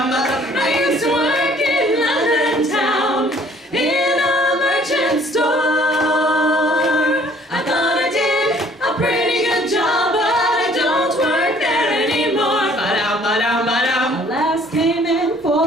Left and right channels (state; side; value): normal; both; correlation 0.58